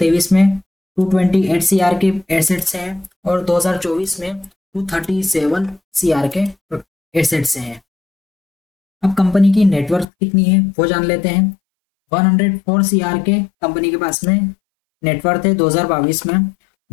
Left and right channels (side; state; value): right; drops out; at 10.1 s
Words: में 228 सीआर के एसेट्स हैं और 2024 में 237 सीआर के एसेट्स हैं। अब कंपनी की नेटवर्थ कितनी है वो जान लेते हैं। 104 सीआर के कंपनी के पास में नेटवर्थ है 2022 में।